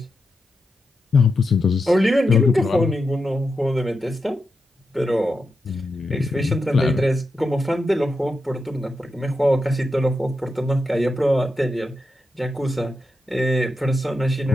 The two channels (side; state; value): both; normal; correlation 0.87